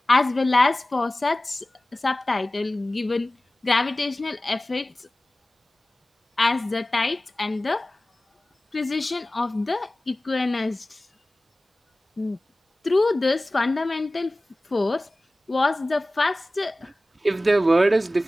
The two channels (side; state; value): both; normal; correlation 0.97